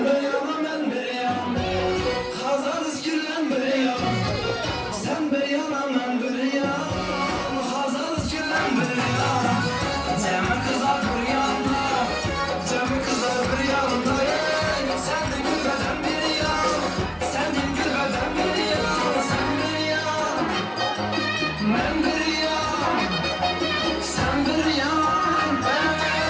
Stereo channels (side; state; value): both; identical; correlation 1.00